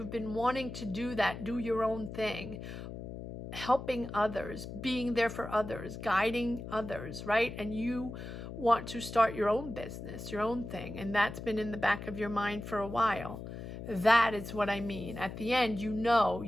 been wanting to do that, do your own thing, helping others, being there for others, guiding others, right? And you want to start your own business, your own thing, and that's been in the back of your mind for a while. That is what I mean. At the end, you know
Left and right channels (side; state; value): left; noise; hum, 9 dB below the sound